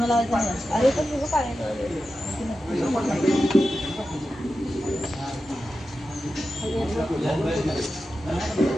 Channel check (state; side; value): normal; both; correlation 0.91